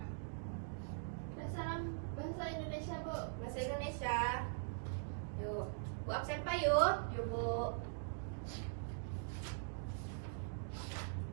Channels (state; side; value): silent; left; digital silence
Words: Bahasa Indonesia, Bu. Bahasa Indonesia. Yuk, Bu absen pak yuk. Yuk Bu.